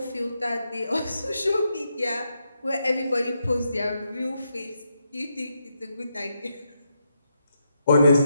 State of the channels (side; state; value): both; inverted; correlation -0.82